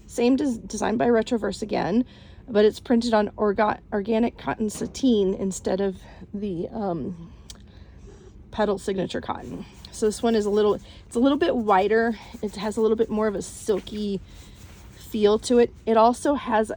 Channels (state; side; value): identical; both; correlation 1.00